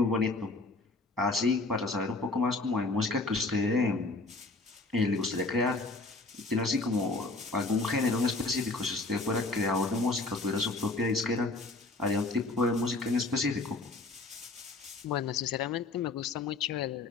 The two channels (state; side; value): quieter; right; 3.3 dB